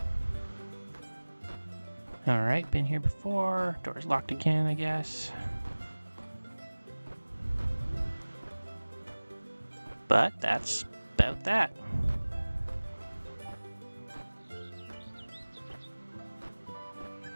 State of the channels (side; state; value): both; inverted; correlation -1.00